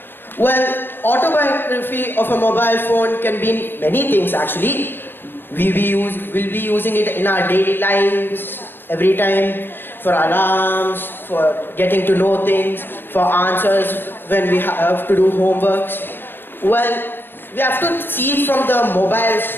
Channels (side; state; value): right; late; 0.10 ms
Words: Well, autobiography of a mobile phone can be many things actually. We'll be using it in our daily lives, every time, for alarms, for getting to know things, for answers when we have to do homeworks. Well, we have to see it from the